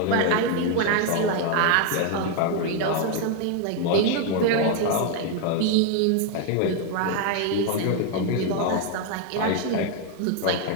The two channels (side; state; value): both; different; correlation 0.01